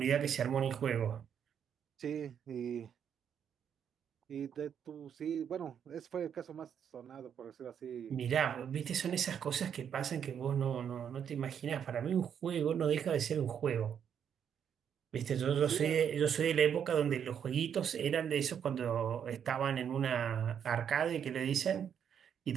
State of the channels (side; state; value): left; quieter; 8.3 dB